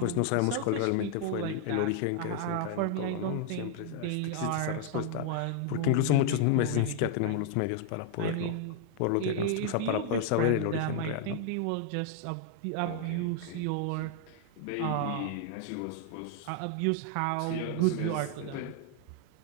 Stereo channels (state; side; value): different; both; correlation 0.00